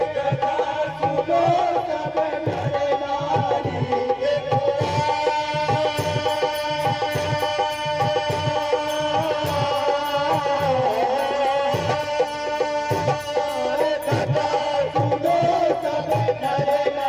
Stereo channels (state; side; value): identical; both; correlation 1.00